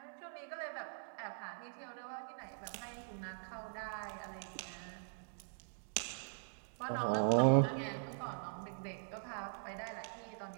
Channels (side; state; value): left; silent; digital silence